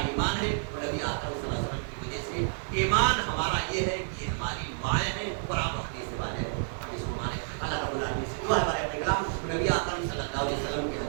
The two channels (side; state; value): left; silent; digital silence